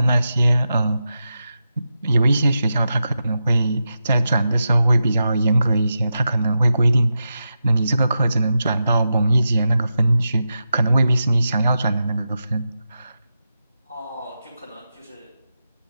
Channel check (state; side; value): inverted; both; correlation -0.89